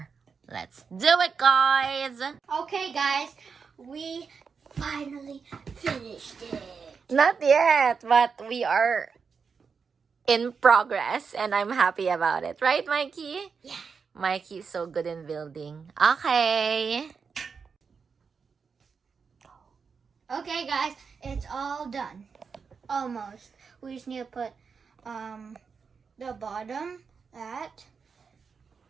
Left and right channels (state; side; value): quieter; left; 5.6 dB